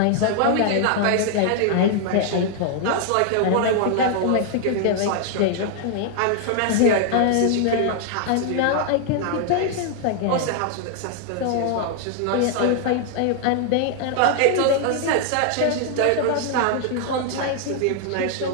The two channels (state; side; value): different; both; correlation 0.00